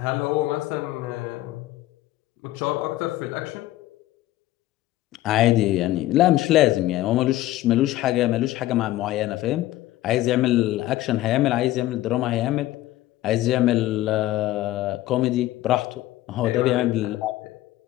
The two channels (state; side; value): quieter; right; 15.6 dB